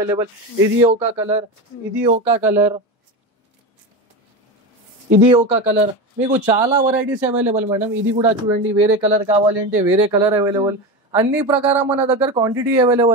ఇది ఒక కలర్, ఇది ఒక కలర్, ఇది ఒక కలర్, మీకు చాలా వెరైటీస్ అవైలబుల్ మేడం. ఇది కూడా చూడండి, వేరే కలర్ కావాలి అంటే వేరే కలర్ అవైలబుల్. అన్ని ప్రకారం మన దగ్గర క్వాంటిటీ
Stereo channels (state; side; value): normal; both; correlation 0.21